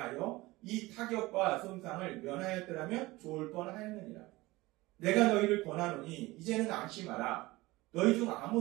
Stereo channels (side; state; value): left; quieter; 20.3 dB